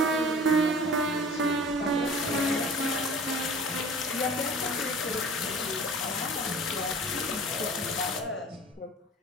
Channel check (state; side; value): normal; both; correlation 0.43